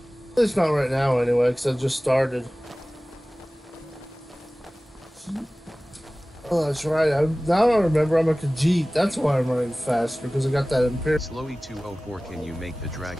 At least not right now, anyway, because I just started. Oh, that's right. Now I remember I'm a Khajiit. That's why I'm running fast, because I got that Imperial. Slowy 204, can you make the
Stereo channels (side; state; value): both; normal; correlation 0.98